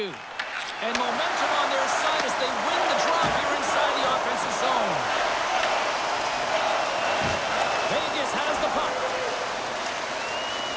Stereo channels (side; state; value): both; identical; correlation 1.00